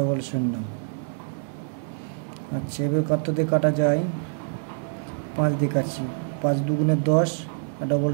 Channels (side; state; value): left; silent; 58 dB below the other